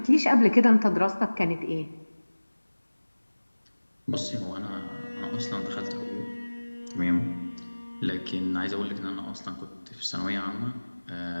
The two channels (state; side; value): inverted; both; correlation -1.00